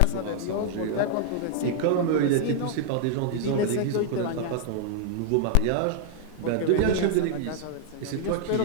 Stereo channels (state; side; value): different; both; correlation 0.00